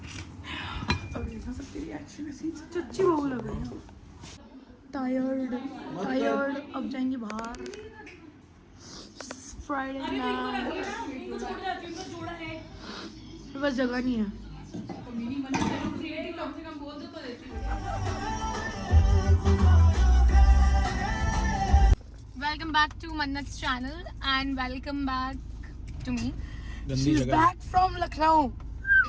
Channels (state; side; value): identical; both; correlation 1.00